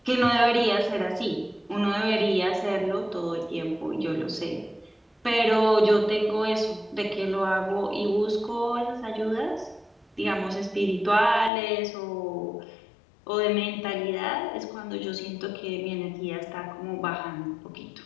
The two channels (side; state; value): right; drops out; at 11.5 s